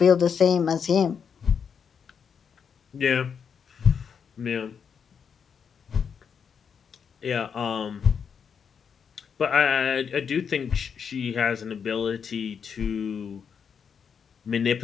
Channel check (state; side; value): quieter; right; 6.8 dB